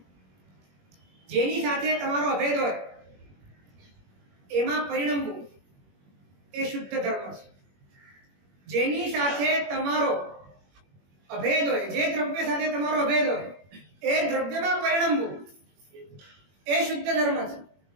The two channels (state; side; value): late; left; 21 ms